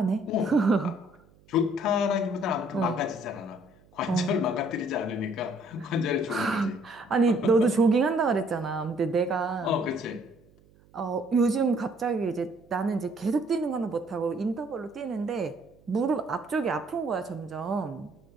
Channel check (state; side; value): noise; right; hum, 29 dB below the sound